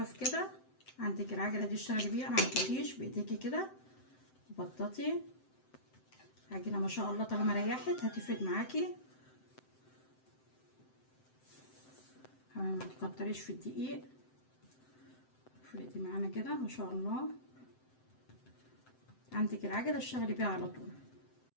كده. عندك العجله دي اشتغلي بيها، ما عندكيش بايديكي كده وبططي. العجينه ما شاء الله طالما ريحت هتفرد معاكي. ما تكتريش في الدقيق، افردي معانا كده ما شاء الله. عندك العجله اشتغلي بيها على طول.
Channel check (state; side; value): late; right; 7.8 ms